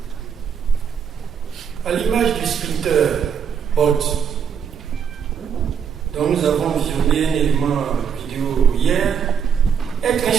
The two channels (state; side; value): quieter; left; 7.5 dB